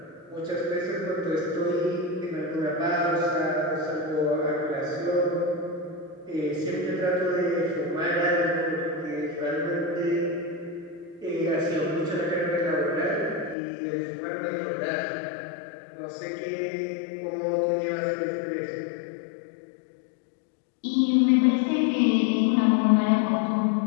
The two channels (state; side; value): drops out; right; at 13.6 s